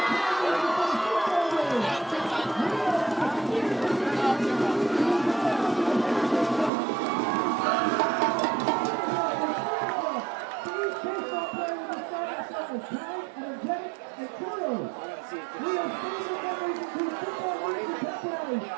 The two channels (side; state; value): left; drops out; at 6.7 s